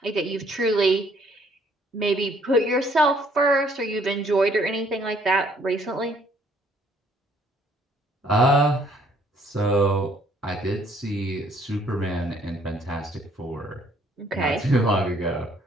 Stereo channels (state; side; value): normal; both; correlation 0.63